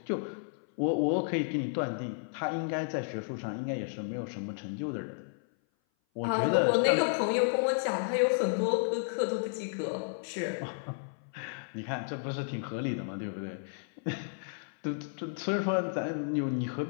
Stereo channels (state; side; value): silent; right; 56 dB below the other